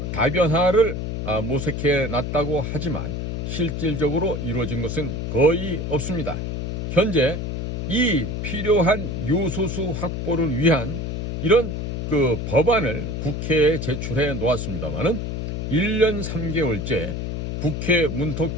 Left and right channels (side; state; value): left; noise; hum, 3 dB below the sound